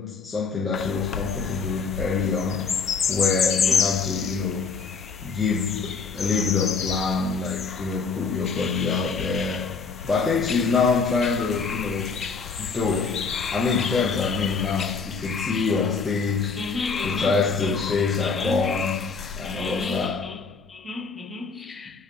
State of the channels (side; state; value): right; quieter; 5.0 dB